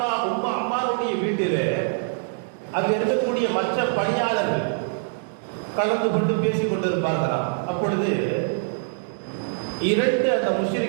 அம்மாருடைய வீட்டிலே அங்கு இருக்கக்கூடிய மற்ற பணியாளர்கள் கலந்து கொண்டு பேசிக் கொண்டிருப்பார்களாம். அப்பொழுது இரண்டு அந்த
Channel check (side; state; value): left; silent; digital silence